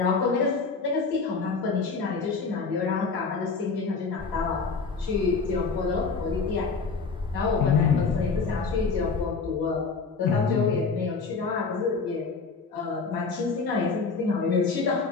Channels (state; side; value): quieter; right; 4.6 dB